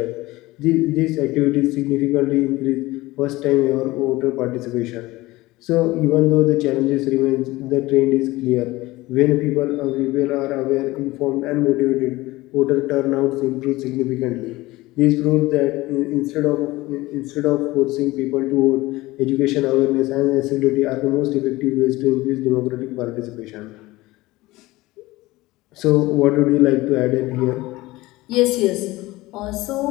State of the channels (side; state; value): right; quieter; 19.5 dB